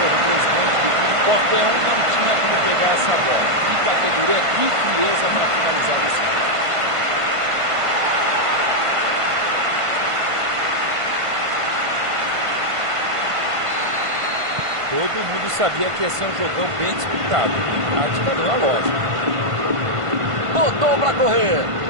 o presidente do clube. Qualquer um não tinha como pegar essa bola. Que categoria, que frieza para finalizar desse cara. Todo mundo sabia que ia ser um jogão bem disputado. A tática deu a lógica. Botou para correr.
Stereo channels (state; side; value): late; left; 1.5 ms